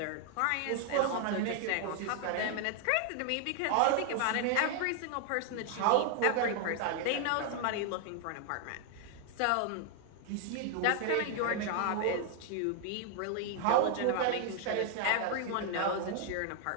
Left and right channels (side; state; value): both; different; correlation 0.00